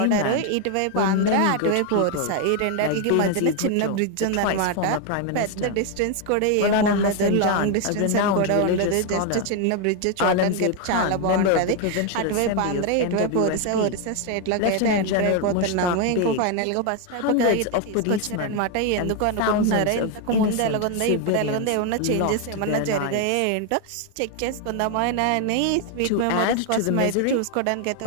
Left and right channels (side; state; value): both; different; correlation 0.01